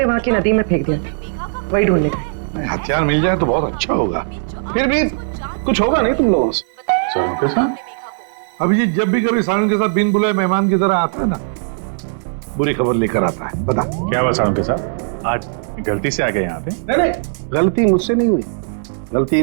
वहाँ की नदी में फेंक दिया था, वही ढूंढने गए। हथियार मिल जाए तो बहुत अच्छा होगा। फिर भी कुछ होगा नहीं तुम लोगों से। सारुण के साथ? अभिजीत जब भी कभी सारुण के साथ बिन बुलाए मेहमान की तरह आता है ना, बुरी खबर लेकर आता है। बता क्या हुआ सारुण के साथ? आज गलती से आ गए यहाँ पे? नहीं, गलती मुझसे नहीं हुई, गलती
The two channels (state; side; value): silent; left; digital silence